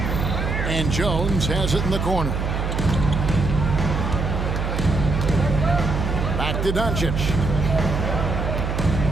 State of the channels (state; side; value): noise; right; hum, 1 dB below the sound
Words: And Jones has it in the corner. Back to Doncic.